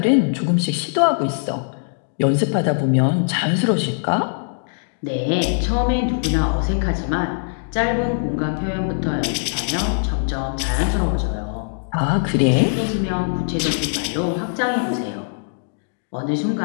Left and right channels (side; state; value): right; silent; digital silence